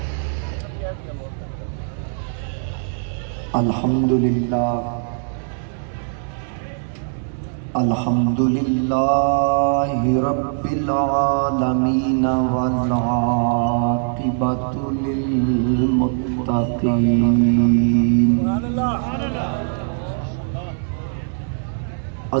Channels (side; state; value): left; silent; 65 dB below the other